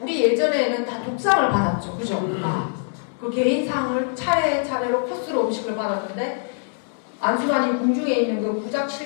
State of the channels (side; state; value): right; silent; digital silence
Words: 예전에는 다 독상을 받았죠, 그죠? 그 개인상을 차례차례로 코스로 음식을 받았는데 안순환이 궁중에 있는 그